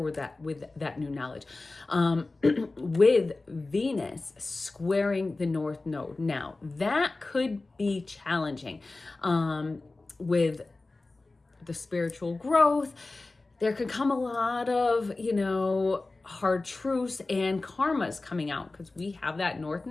with that new knowledge. With Venus squaring the North Node. Now, that could be challenging with the spiritual growth. There could come a lot of, hard truths and karmas coming out, because we have that North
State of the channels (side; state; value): right; quieter; 3.3 dB